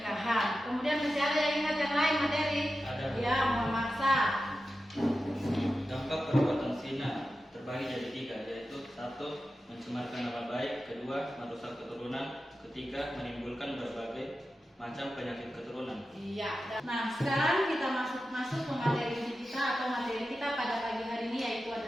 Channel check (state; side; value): normal; both; correlation 0.92